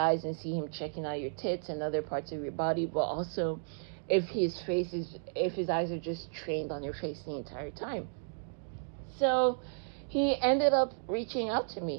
and see him checking out your tits and other parts of your body, but also if his eyes are just trained on your face the entire time. So he ended up reaching out to me.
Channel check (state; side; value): silent; left; digital silence